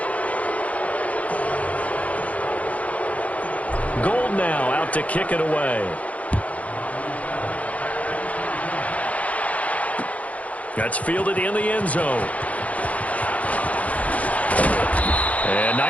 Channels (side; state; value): right; late; 0.067 ms